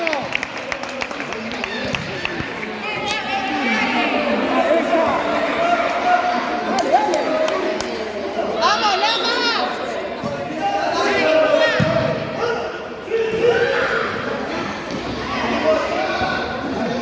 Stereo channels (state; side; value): identical; both; correlation 1.00